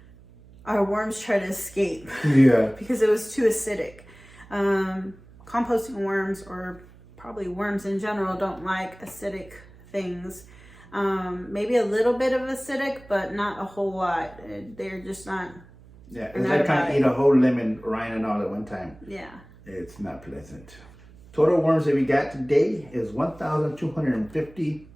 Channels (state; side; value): noise; right; hum, 22 dB below the sound